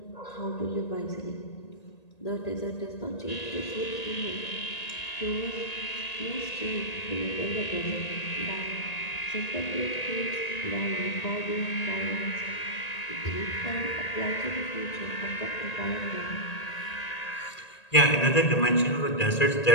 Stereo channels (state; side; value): late; right; 1.9 ms